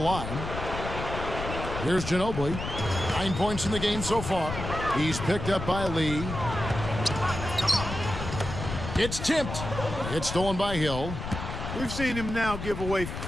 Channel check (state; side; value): noise; left; rumble, 6 dB below the sound